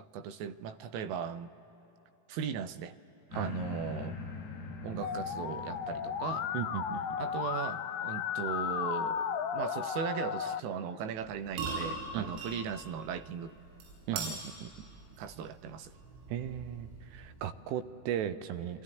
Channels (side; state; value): left; late; 18 ms